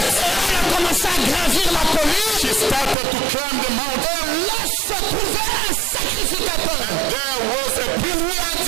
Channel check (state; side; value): drops out; left; at 3.0 s